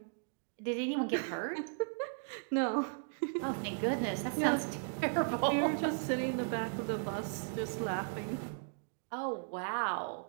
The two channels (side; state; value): left; silent; digital silence